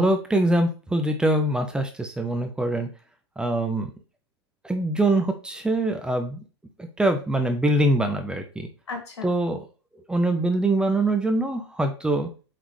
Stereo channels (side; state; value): both; normal; correlation 0.70